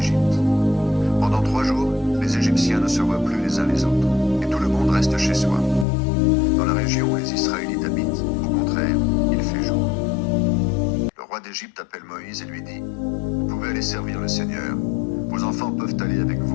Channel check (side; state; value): right; drops out; at 5.9 s